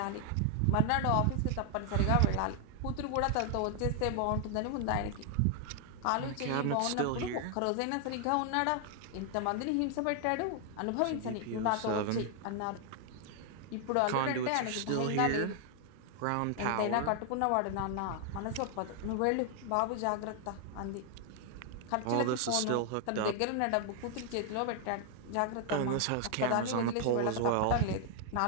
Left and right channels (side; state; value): both; different; correlation 0.00